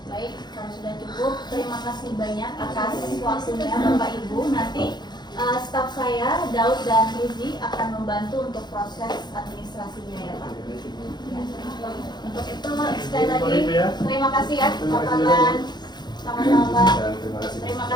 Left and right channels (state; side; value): late; right; 0.21 ms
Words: Baik, kalau sudah cukup, terima kasih banyak atas waktunya Bapak Ibu. Nanti staf saya, Daud dan Rizi akan membantu untuk proses administrasinya ya Pak. Ya. Untuk itu sekali lagi, terima kasih ya Pak Fadlan. Sama-sama Pak. Terima